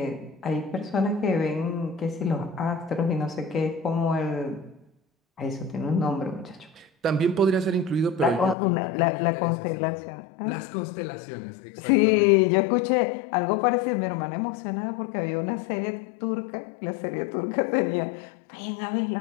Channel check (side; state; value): right; drops out; at 8.6 s